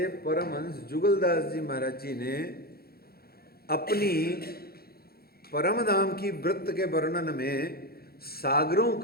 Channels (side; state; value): right; late; 0.45 ms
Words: परमहंस जुगलदास जी महाराज जी ने अपनी परमधाम की वृत्त के वर्णन में सागरों